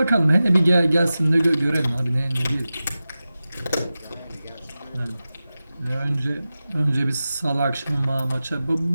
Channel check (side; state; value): both; inverted; correlation -0.95